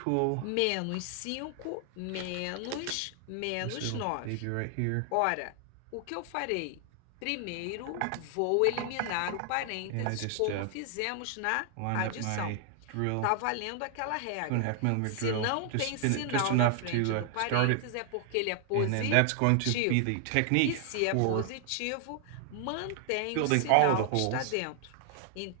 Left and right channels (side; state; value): both; different; correlation 0.00